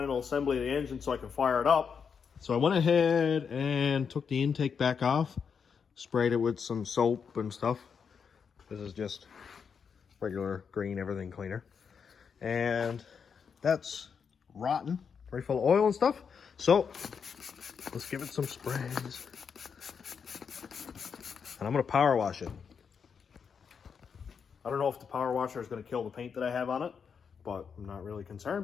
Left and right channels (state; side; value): quieter; right; 6.4 dB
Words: assembly of the engine so I can fire it up. So I went ahead and took the intake back off, sprayed it with some soap and stuff. This is just regular green everything cleaner. And that's rotten, very full of oil and stuff. So let's give it some sprays. And I'm gonna power wash it. I don't know if the power washer is gonna kill the paint that I have on it, but I'm not really